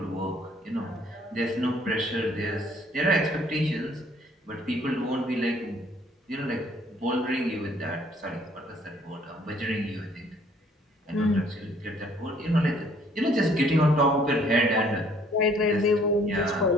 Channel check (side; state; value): both; normal; correlation 0.61